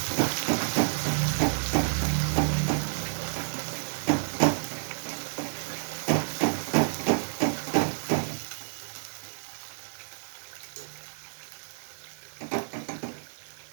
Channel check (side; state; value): left; silent; 58 dB below the other